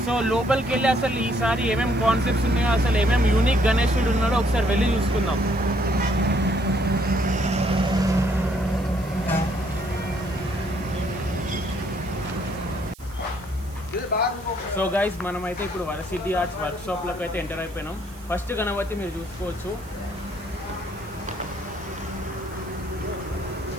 సో లోపలికి వెళ్ళి అసలు ఈసారి ఏమేమి కాన్సెప్ట్స్ ఉన్నాయో, అసలు ఏమేమి యూనిక్ గణేశుడు ఉన్నాడో ఒకసారి వెళ్ళి చూసుకుందాం. సో గైస్, మనమైతే ఇప్పుడు వరసిద్ధి ఆర్ట్స్ వర్క్షాప్లోకి అయితే ఎంటర్ అయిపోయినాం. ఫస్ట్ గణపతి మీరు చూసుకోవచ్చు.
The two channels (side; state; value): right; noise; hiss, 23 dB below the sound